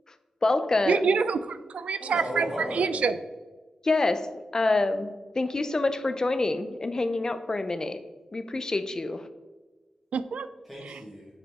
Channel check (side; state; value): both; normal; correlation 0.86